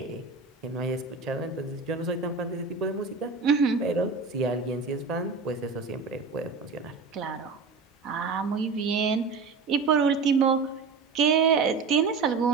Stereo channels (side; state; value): left; quieter; 4.7 dB